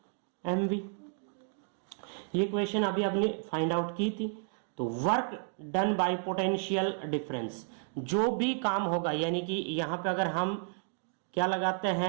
M V. ये क्वेश्चन अभी आपने फाइंड आउट की थी। तो work done by potential difference, जो भी काम होगा यानी कि यहां पे अगर हम क्या लगाते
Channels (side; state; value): left; silent; 56 dB below the other